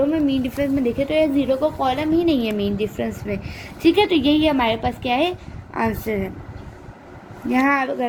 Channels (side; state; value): both; identical; correlation 1.00